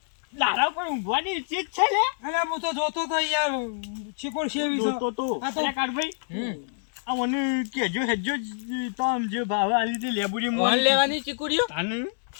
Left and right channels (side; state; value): right; silent; digital silence